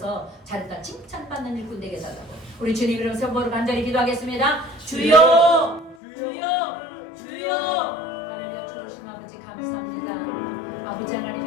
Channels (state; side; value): drops out; right; at 6.0 s